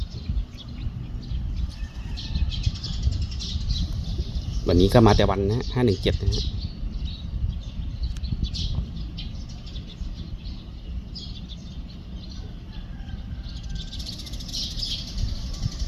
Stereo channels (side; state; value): both; identical; correlation 1.00